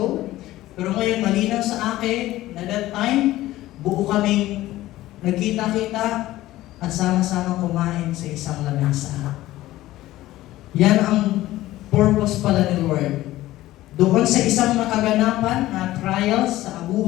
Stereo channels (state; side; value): quieter; right; 16.0 dB